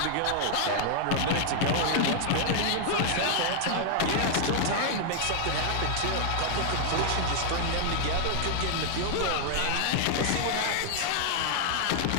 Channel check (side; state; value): both; different; correlation 0.00